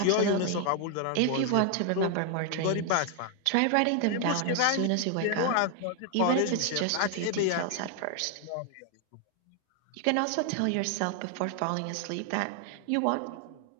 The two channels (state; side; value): different; both; correlation 0.00